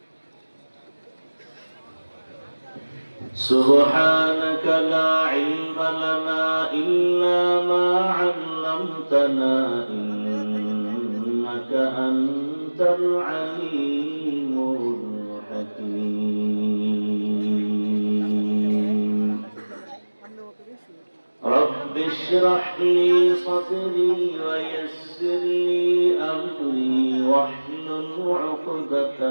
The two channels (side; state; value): both; inverted; correlation -1.00